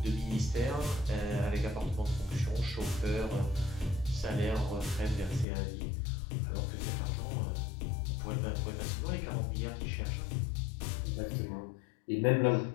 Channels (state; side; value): drops out; right; at 5.5 s